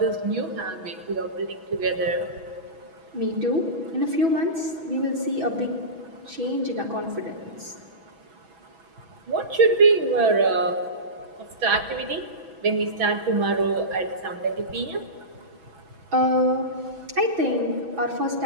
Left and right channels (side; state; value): left; late; 6.1 ms